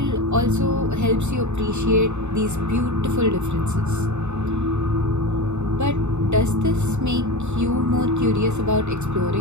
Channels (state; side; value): late; left; 0.82 ms